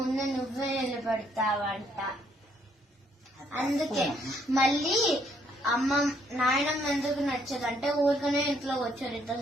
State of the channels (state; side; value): normal; both; correlation 0.69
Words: నువ్వే నిలబడతావంట. అందుకే మళ్ళీ నాయనమ్మ ఎందుకు నచ్చదంటే ఊరికనే ఇంట్లో వచ్చారు